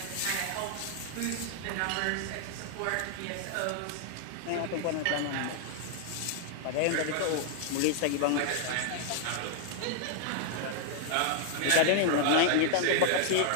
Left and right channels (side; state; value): both; different; correlation 0.00